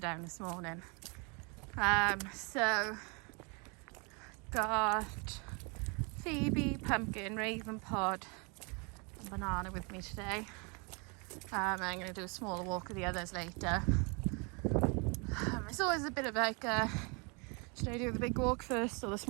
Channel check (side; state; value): left; quieter; 32.4 dB